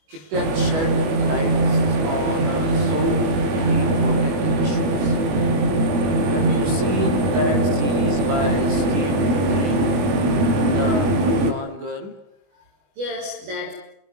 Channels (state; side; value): late; left; 21 ms